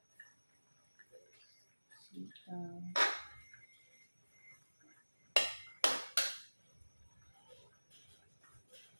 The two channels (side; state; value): both; inverted; correlation -1.00